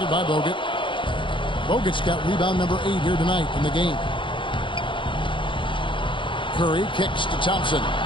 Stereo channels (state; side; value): late; right; 0.24 ms